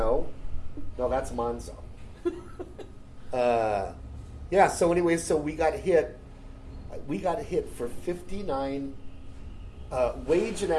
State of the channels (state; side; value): identical; both; correlation 1.00